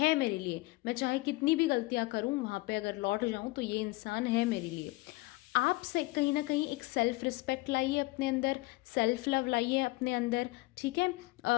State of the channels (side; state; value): right; quieter; 22.2 dB